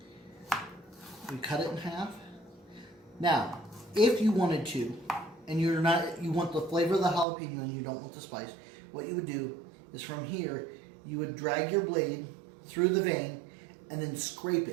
We cut it in half. Now, if you wanted to, and you want the flavor of the jalapeno and you don't want the spice, what you would do is from here, you would drag your blade through the vein and then scrape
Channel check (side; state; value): left; drops out; at 7.2 s